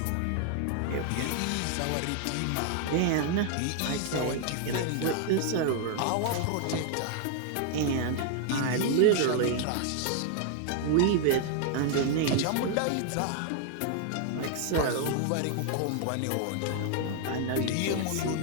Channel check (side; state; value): both; different; correlation 0.00